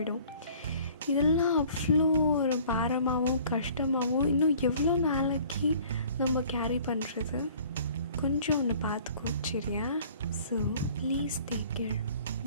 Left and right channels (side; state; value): both; inverted; correlation -0.52